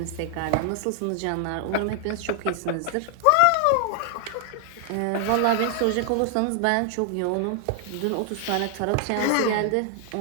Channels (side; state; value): both; different; correlation 0.00